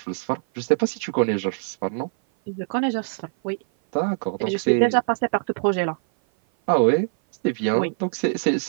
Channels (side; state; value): left; silent; 56 dB below the other